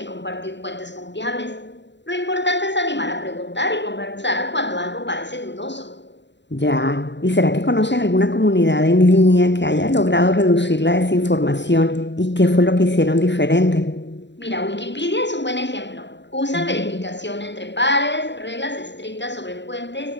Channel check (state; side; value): late; right; 0.52 ms